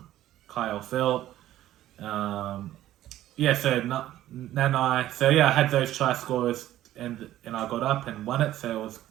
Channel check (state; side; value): quieter; left; 13.6 dB